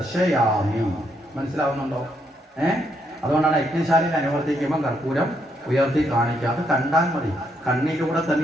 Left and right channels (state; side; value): normal; both; correlation 0.76